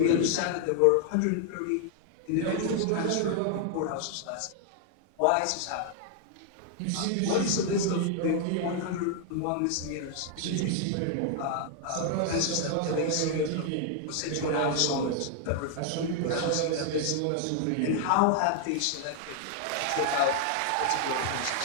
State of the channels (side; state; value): both; different; correlation 0.00